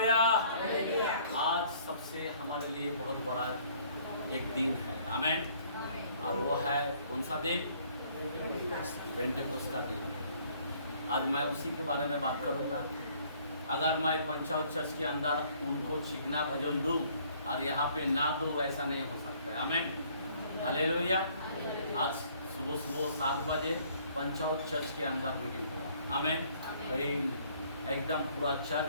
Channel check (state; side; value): inverted; both; correlation -0.60